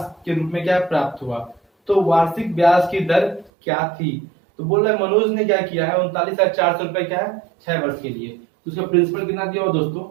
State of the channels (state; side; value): drops out; left; at 3.5 s